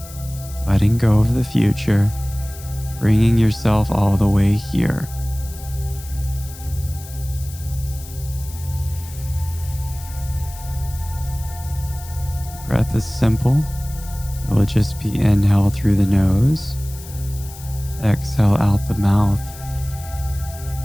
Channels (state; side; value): noise; left; hiss, 17 dB below the sound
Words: letting go of the future, bringing yourself all the way here. The breath is simple. It will just be inhale through the nose, exhale out the mouth,